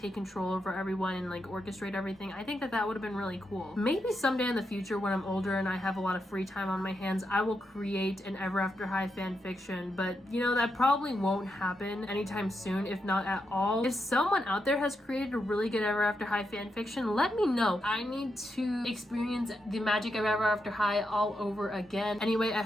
control over everyone and like orchestrate everything. I think that that would have been really cool. Maybe someday in the future when I'm older and I have a lot of free time on my hands, I will create an Ever After High fan fiction, but you know, that probably won't happen anytime soon, if not at all. If someone out there has created a really good Ever After High fan fiction, let me know. I need to experience the magic of Ever After High all over again. Anyway, I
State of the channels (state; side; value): normal; both; correlation 0.84